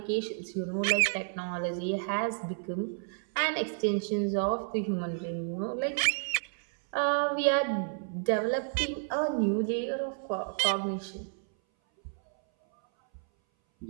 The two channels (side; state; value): left; silent; 57 dB below the other